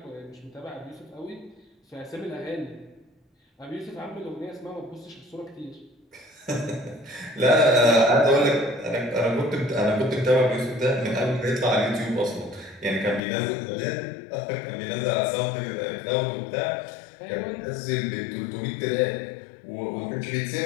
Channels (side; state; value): right; drops out; at 13.2 s